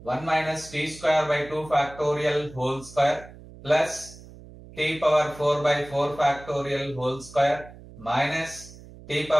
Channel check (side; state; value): right; noise; hum, 19 dB below the sound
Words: 1 minus t square by 2 factorial whole square plus t power 4 by 4 factorial whole square minus t